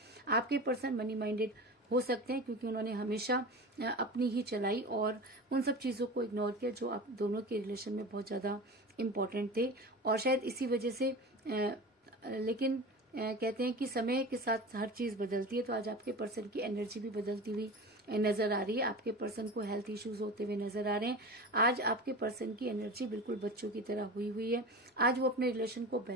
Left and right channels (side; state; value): both; normal; correlation 0.32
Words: आपके पर्सन मनी माइंडेड हो सकते हैं, क्योंकि उन्होंने हमेशा अपनी ही चलाई और उन सब चीजों को इग्नोर किया जो आप दोनों के रिलेशन में बहुत ज्यादा इम्पोर्टेंट थे। और शायद इसी वजह से लेकिन कहते हैं कि समय के साथ हर चीज बदलती है। तो आज आपके पर्सन की एनर्जी भी बदलती हुई नजर आ रही है। आपके पर्सन को हेल्थ इश्यूज होते हुए नजर आ रहे हैं। आज आपके पर्सन की एनर्जी बिल्कुल बच्चों की तरह हुई है। आज वो अपने रिलेशन को